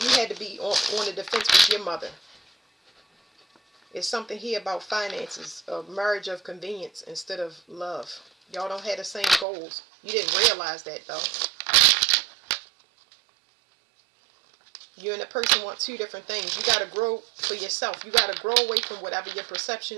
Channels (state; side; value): drops out; left; at 9.5 s